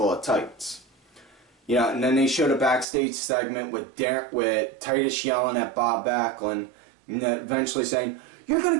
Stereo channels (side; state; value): left; drops out; at 2.9 s